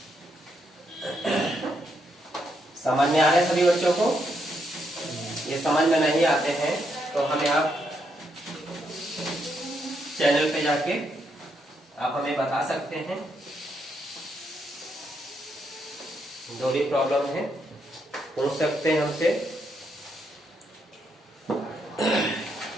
समझ में आ रहे हैं सभी बच्चों को? ये समझ में नहीं आते हैं तो हमें आप चैनल पे जाके आप हमें बता सकते हैं, जो भी प्रॉब्लम है पूछ सकते हैं हमसे।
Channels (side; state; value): both; normal; correlation 0.78